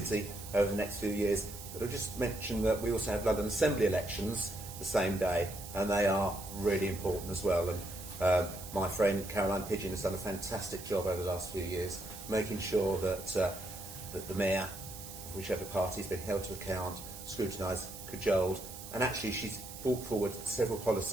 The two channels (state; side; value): noise; right; hiss, 12 dB below the sound